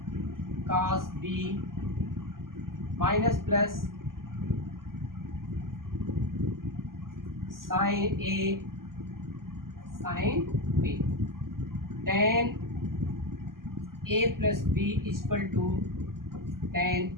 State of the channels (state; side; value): late; left; 0.92 ms